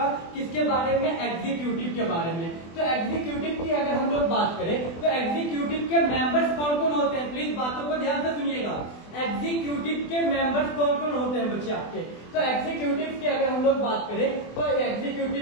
किसके बारे में? एग्जीक्यूटिव के बारे में। तो एग्जीक्यूटिव की अगर हम लोग बात करें तो एग्जीक्यूटिव के मेंबर्स कौन कौन होते हैं? प्लीज बातों को ध्यान से सुनिएगा। एग्जीक्यूटिव के मेंबर्स कौन कौन होते हैं बच्चे आपके? तो एग्जीक्यूटिव की अगर हम लोग बात करें तो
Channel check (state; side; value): late; right; 24 ms